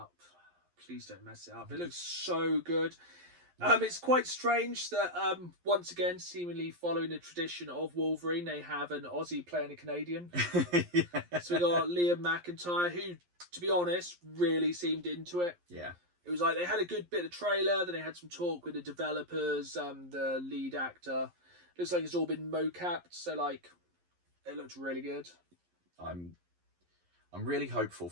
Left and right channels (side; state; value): left; late; 11 ms